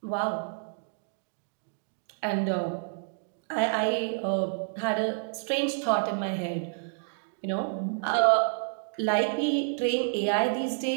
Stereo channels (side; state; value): left; silent; digital silence